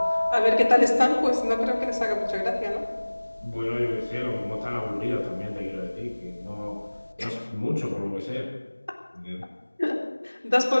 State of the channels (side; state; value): both; inverted; correlation -1.00